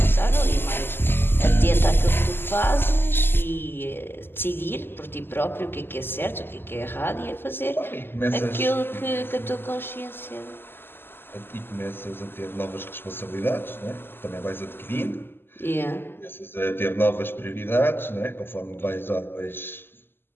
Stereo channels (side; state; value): right; late; 0.10 ms